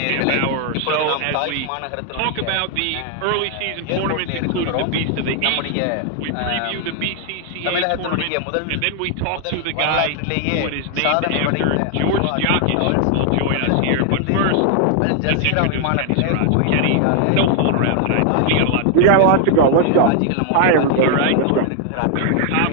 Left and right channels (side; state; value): both; different; correlation 0.00